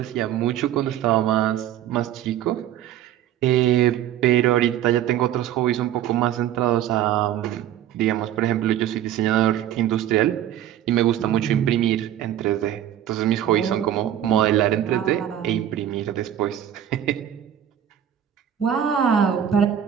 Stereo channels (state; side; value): quieter; left; 11.1 dB